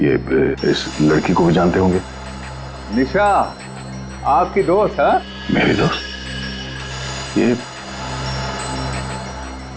इस लड़की को भी जानते होंगे। निशा आपकी दोस्त? हाँ, मेरी दोस्त? ये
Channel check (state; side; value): identical; both; correlation 1.00